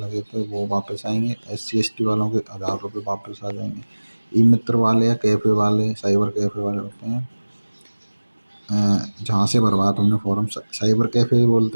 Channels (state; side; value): inverted; both; correlation -1.00